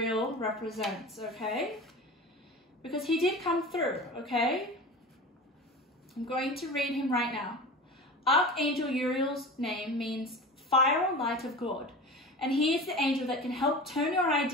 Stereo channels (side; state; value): both; normal; correlation 0.33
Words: represents, okay? Because he did come through, okay? I'm going to read him right now. Archangel Uriel's name means fire or light of God, and he is the angel that can help turn your